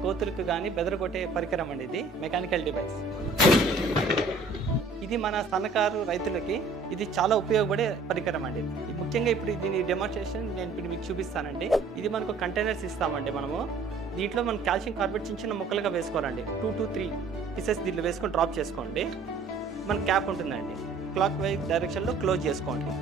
కోతులకు కానీ బెదరగొట్టే పరికరం అండి. ఇది మెకానికల్ డివైస్. ఇది మన సన్నకారు రైతులకి ఇది చాలా ఉపయోగపడే పరికరం అండి. ఇది ముఖ్యంగా ఇప్పుడు దీని డెమోన్స్ట్రేషన్ నేను ఇప్పుడు మీకు చూపిస్తానండి. ఇది మనకు కంటైనర్స్ ఇస్తామండి. మనము దీంట్లో మనం కాల్షియం కార్బోనేట్ చిన్న చిన్న ముక్కలుగా వేసుకోవాలండి. 2 to 3 పీసెస్ దీంట్లో వేసుకొని డ్రాప్ చేసుకోండి. మన క్యాప్ ఉంటుందండి. క్లాక్ వైజ్ డైరెక్షన్లో క్లోజ్ చేసుకోండి.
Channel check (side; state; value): left; quieter; 3.8 dB